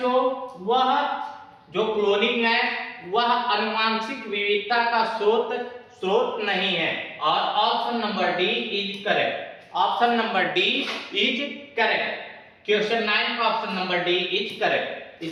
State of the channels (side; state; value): both; identical; correlation 1.00